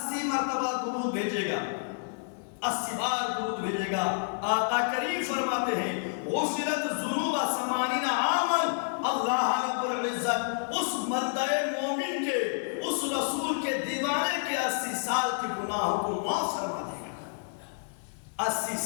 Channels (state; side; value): silent; right; digital silence